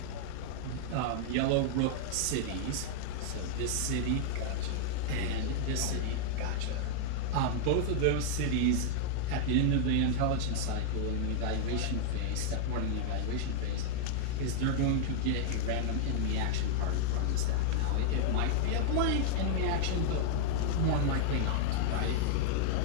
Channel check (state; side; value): different; both; correlation -0.01